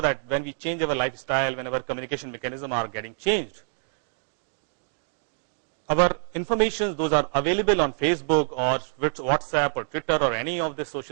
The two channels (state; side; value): silent; left; 61 dB below the other